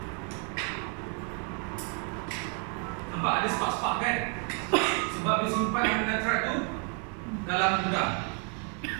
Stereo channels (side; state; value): left; quieter; 39.7 dB